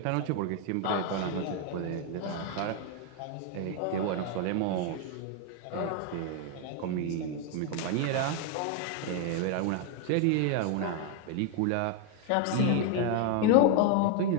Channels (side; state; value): both; different; correlation 0.01